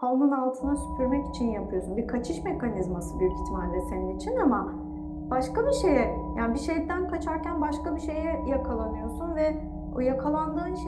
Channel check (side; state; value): both; identical; correlation 1.00